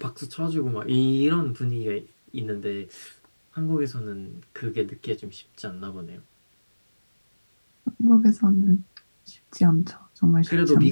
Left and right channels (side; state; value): both; inverted; correlation -1.00